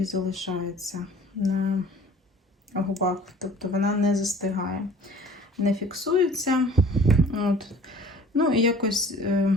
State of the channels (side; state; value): both; normal; correlation 0.48